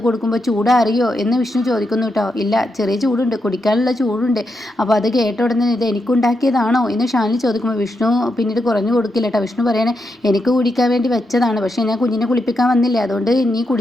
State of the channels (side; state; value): both; normal; correlation 0.84